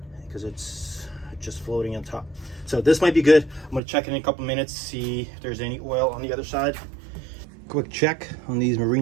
because it's just floating on top. So this might be good. I'm gonna check in a couple minutes, see if there's any oil on the other side. Quick check on these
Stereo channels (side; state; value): left; drops out; at 3.8 s